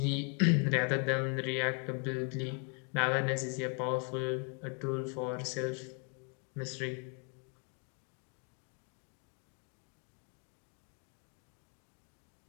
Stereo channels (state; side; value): quieter; right; 38.6 dB